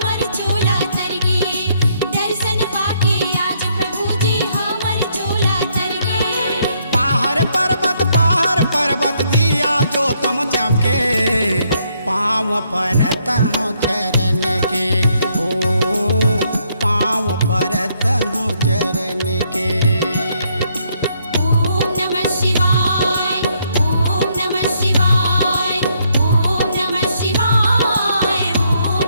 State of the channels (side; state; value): both; inverted; correlation -0.72